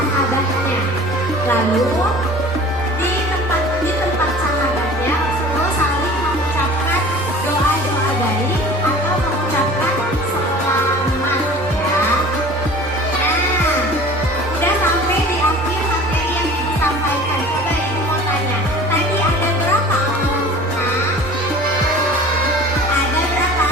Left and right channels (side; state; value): both; normal; correlation 0.43